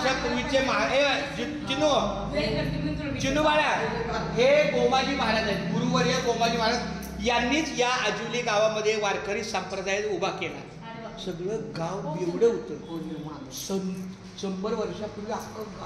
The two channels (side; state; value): both; identical; correlation 1.00